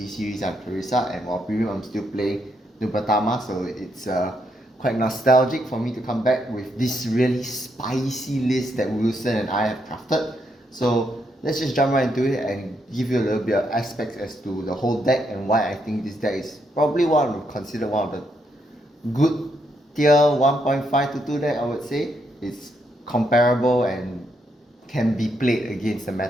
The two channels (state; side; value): normal; both; correlation 0.78